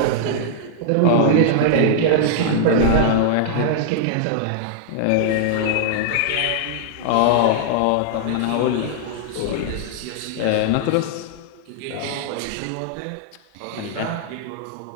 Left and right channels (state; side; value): different; both; correlation -0.01